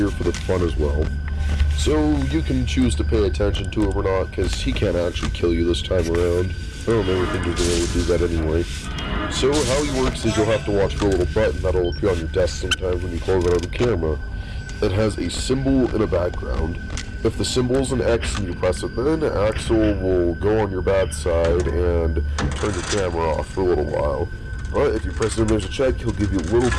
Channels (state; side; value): identical; both; correlation 1.00